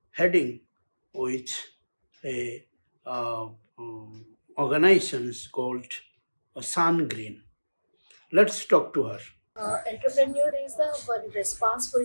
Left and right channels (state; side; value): inverted; both; correlation -1.00